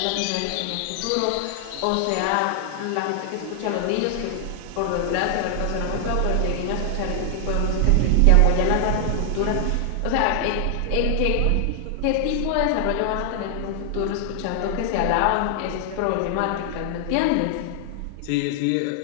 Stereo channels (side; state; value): both; different; correlation 0.00